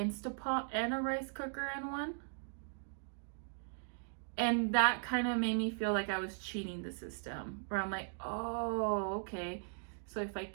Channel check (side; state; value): left; silent; digital silence